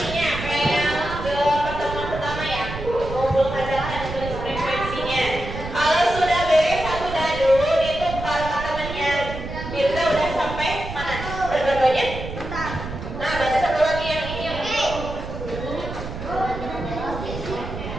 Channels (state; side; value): noise; right; rumble, 8 dB below the sound